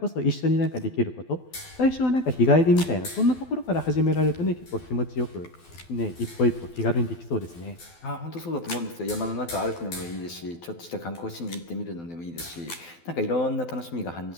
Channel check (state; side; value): late; right; 12 ms